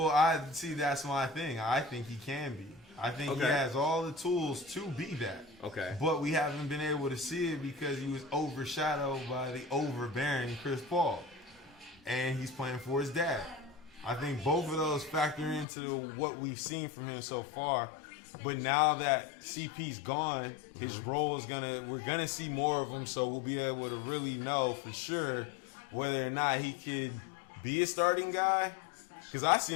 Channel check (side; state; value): right; drops out; at 15.7 s